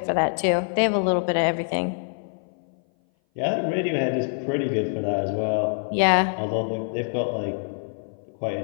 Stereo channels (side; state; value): right; silent; 58 dB below the other